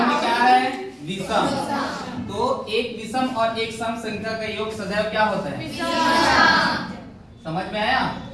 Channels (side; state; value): both; identical; correlation 1.00